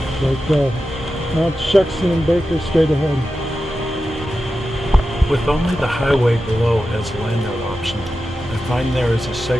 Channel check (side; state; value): both; normal; correlation 0.91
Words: Like Mount Shuxton and Baker straight ahead. With only the highway below as a landout option, I find there is a